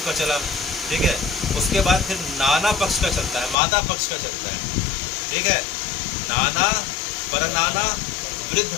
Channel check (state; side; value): drops out; right; at 3.6 s